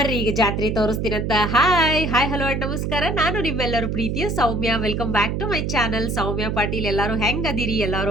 ಈಗ ಜಾತ್ರೆ ತೋರಿಸ್ತೀನಂತ. ಹಾಯ್ ಹಲೋ ಅಂಡ್ ನಮಸ್ಕಾರ. ನಾನು ನಿಮ್ಮೆಲ್ಲರೂ ಪ್ರೀತಿಯ Soumya. Welcome back to my channel Soumya Patil. ಎಲ್ಲಾರು ಹೆಂಗ್ ಅದಿರಿ?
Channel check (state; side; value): noise; right; hum, 1 dB below the sound